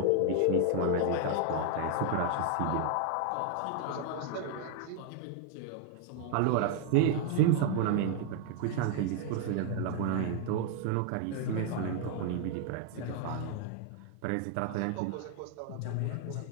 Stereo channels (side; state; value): both; different; correlation 0.00